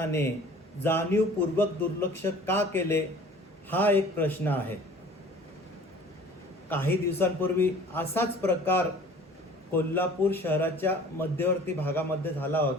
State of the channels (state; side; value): normal; both; correlation 0.47